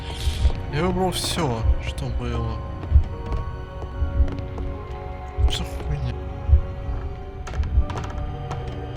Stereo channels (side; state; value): both; identical; correlation 1.00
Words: Я выбрал все, что было. Что хуйня?